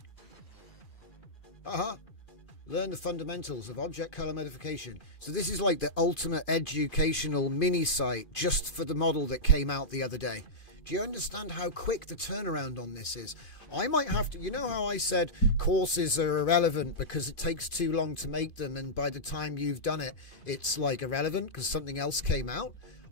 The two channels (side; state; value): right; late; 2.5 ms